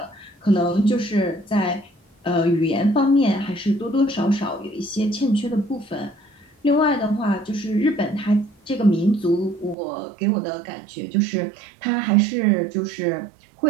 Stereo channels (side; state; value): left; drops out; at 9.8 s